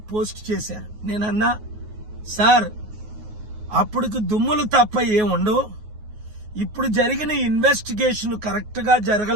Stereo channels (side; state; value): left; late; 9.4 ms